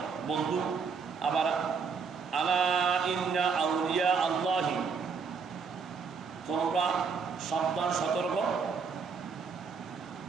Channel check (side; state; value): left; quieter; 5.5 dB